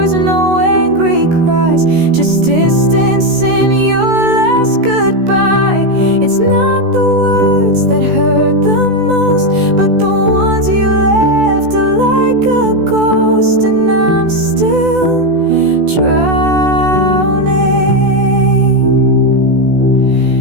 no angry cries, just distance in your last goodbye. It's not the words that hurt the most, but the ones you left are like a ghost, and I'm still drowning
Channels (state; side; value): late; left; 16 ms